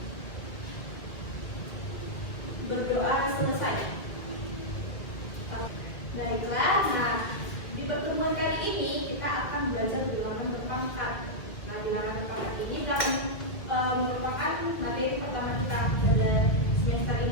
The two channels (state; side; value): late; right; 1.8 ms